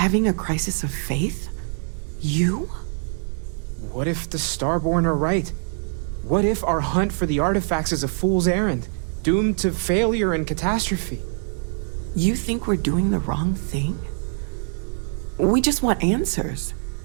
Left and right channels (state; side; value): silent; left; digital silence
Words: a crisis of faith? You? What if the Starborn are right? What if our hunt for the artifacts is a fool's errand, doomed to failure and catastrophe? You think we're doing the wrong thing? We just want answers.